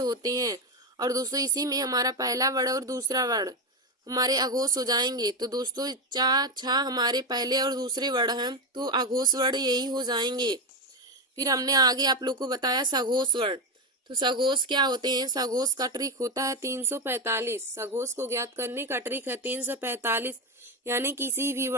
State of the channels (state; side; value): normal; both; correlation 0.12